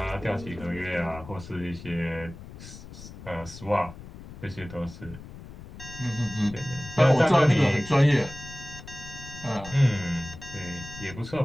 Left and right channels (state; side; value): noise; left; rumble, 15 dB below the sound